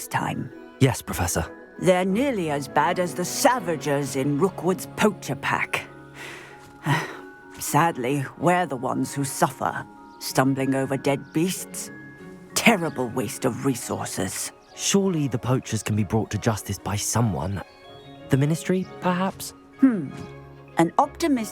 time. Yes, Professor. They're nearly as bad as the Savagers in Rookwood's poacher pack. Sadly, we're the ones who suffer, stumbling over dead beasts. Terrible waste of resources. Surely the poachers can be brought to justice by someone. The Ministry, perhaps? An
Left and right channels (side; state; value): both; identical; correlation 1.00